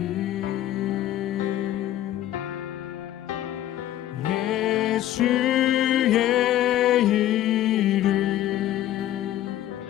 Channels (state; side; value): quieter; right; 13.0 dB